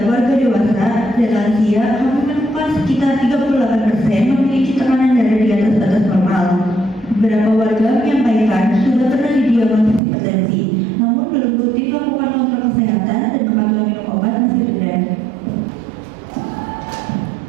warga dewasa dan lansia. Kami menemukan sekitar 38% memiliki tekanan darah di atas batas normal. Beberapa warga menyampaikan sudah pernah didiagnosis hipertensi, namun belum rutin melakukan kontrol kesehatan dan kepatuhan minum obat masih rendah.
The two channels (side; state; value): left; drops out; at 10.0 s